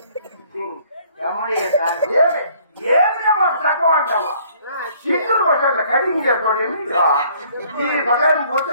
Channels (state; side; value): inverted; both; correlation -0.59